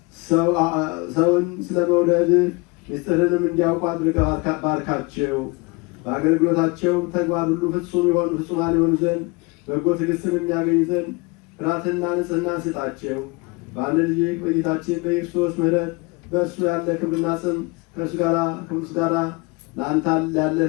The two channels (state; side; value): quieter; right; 26.9 dB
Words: ሰውን ስለ መውደድ ምስጢርንም እንዲያውቁ አድርገህ ባርካቸው። በአገልግሎታቸውም ተግባር ሁሉ ፍጹማን የሆኑ ዘንድ በጎ ትዕግስትን የሚያገኙ ዘንድ ፍርሃትና ንጽሕና ስጣቸው። በአንድ ልጅ በጌታችን በክርስቶስ ምሕረት በእርሱ ያለ ክብርና ጽም ከእርሱ ጋር ለአንተ ያለ